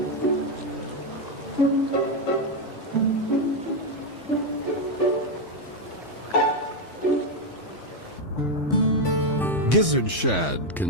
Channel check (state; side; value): normal; both; correlation 0.04